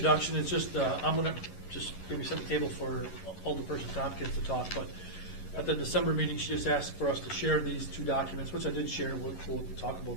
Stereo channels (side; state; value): right; late; 11 ms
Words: It's just, I'm going to just maybe set the table for Alderperson Tompkins to talk, but at the December meeting, she just asked for us to share these 2 documents, which I did share. We'll talk